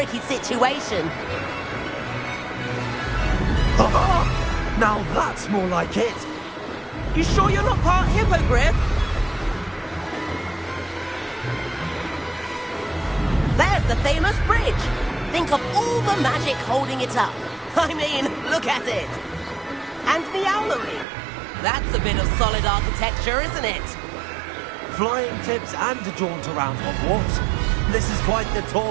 situation. Now that's more like it. You sure you're not part hippogriff? There's the famous bridge. Think of all the magic holding it up. I mean, look at it. And the owlery. That's a bit of solid architecture, isn't it? Flying tips and a jaunt around Hogwarts. This is quite the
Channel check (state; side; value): drops out; left; at 21.1 s